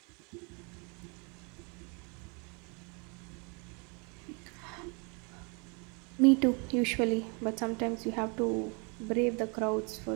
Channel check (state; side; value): quieter; left; 33.4 dB